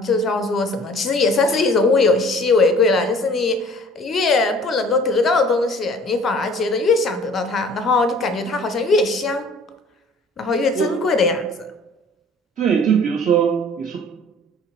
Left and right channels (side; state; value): both; normal; correlation 0.50